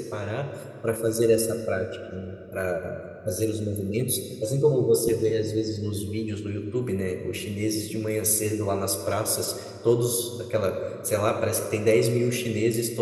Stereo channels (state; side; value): identical; both; correlation 1.00